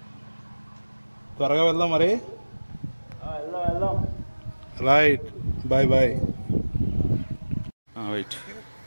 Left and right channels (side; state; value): both; inverted; correlation -1.00